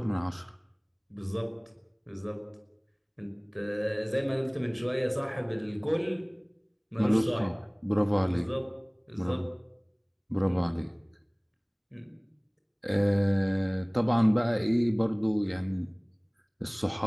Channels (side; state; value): both; identical; correlation 1.00